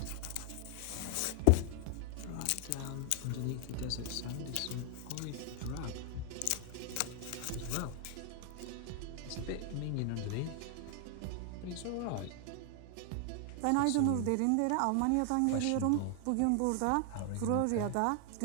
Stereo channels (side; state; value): both; different; correlation 0.00